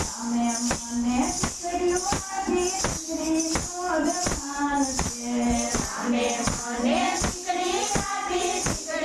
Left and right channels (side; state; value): both; identical; correlation 1.00